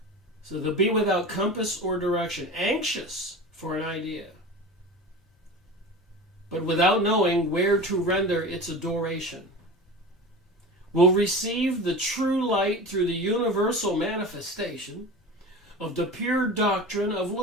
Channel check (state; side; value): normal; both; correlation 0.32